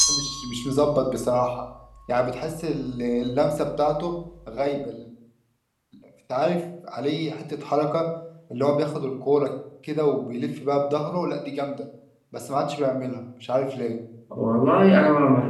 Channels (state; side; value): identical; both; correlation 1.00